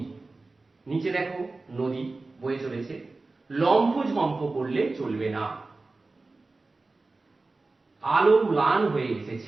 নিচে দেখো নদী বয়ে চলেছে। লম্ফ ঝম্প করলে চলবে না। আলো ম্লান হয়ে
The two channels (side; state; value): left; quieter; 3.4 dB